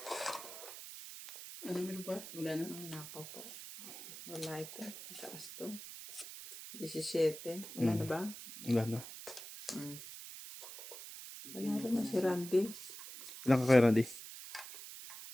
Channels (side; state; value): right; noise; hiss, 12 dB below the sound